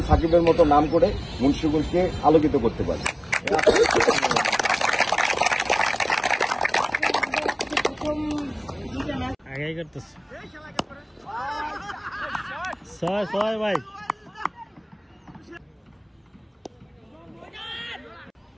সাকিবের মতো নাম করে মুন্সিগঞ্জকে আলোকিত করতে পারে। আগে করতেছে ছয় ভাই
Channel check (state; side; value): identical; both; correlation 1.00